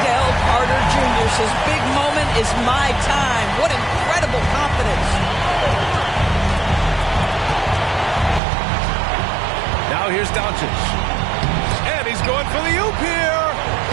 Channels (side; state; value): left; drops out; at 8.4 s